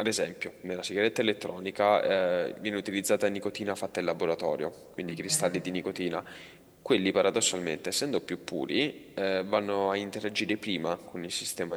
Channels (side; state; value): both; identical; correlation 1.00